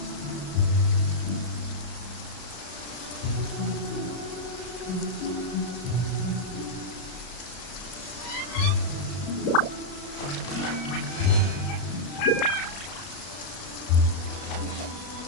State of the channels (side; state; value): right; late; 33 ms